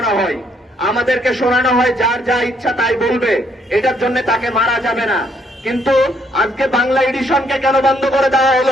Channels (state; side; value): normal; both; correlation 0.70